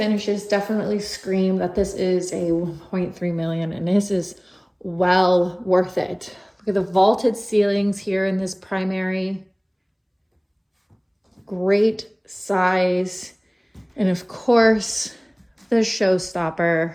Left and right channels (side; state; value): both; identical; correlation 1.00